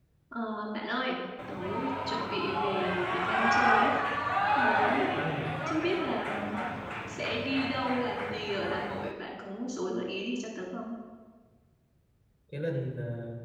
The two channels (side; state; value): both; identical; correlation 1.00